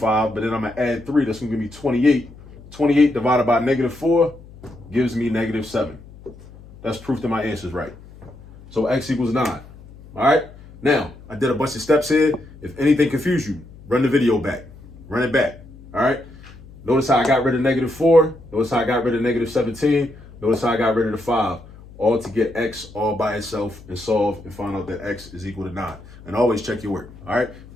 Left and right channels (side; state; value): left; noise; hum, 20 dB below the sound